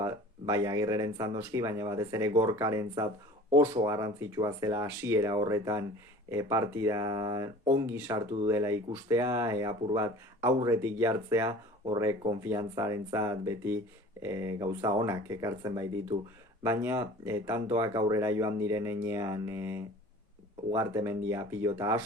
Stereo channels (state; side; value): normal; both; correlation 0.44